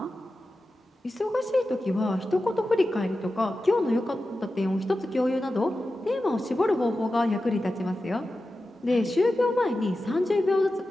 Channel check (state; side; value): normal; both; correlation 0.93